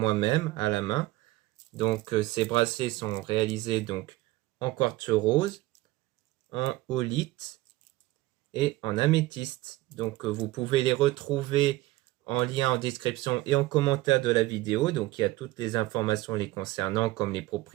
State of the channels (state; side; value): quieter; left; 18.3 dB